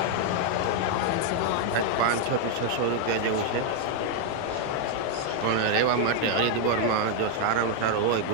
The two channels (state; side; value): different; both; correlation 0.00